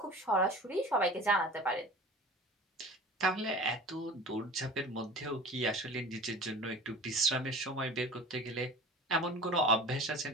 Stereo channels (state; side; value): normal; both; correlation 0.38